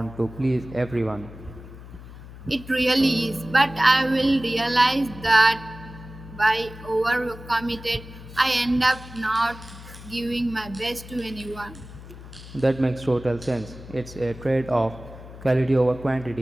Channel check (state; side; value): noise; left; hum, 16 dB below the sound